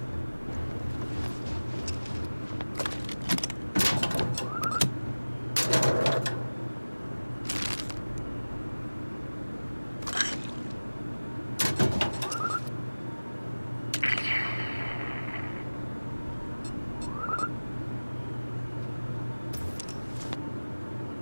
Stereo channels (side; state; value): both; inverted; correlation -1.00